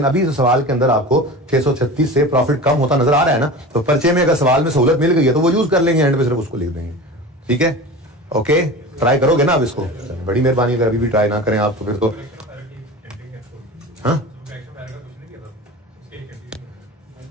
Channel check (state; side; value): normal; both; correlation 0.33